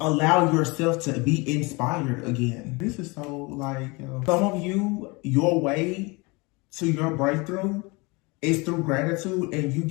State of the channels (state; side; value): quieter; right; 26.7 dB